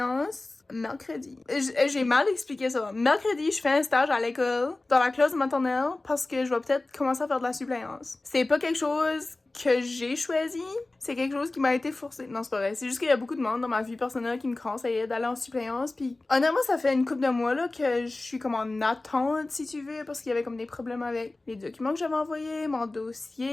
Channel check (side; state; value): right; quieter; 3.0 dB